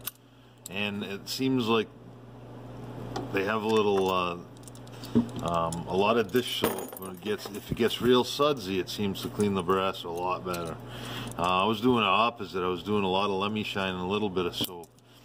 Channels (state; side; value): identical; both; correlation 1.00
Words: and it seems like they have a little, a lot of dish soap. When if it gets real sudsy, it seems to clean the brass a lot better. I was doing the opposite. I was doing a lot of LemiShine and a little bit of soap.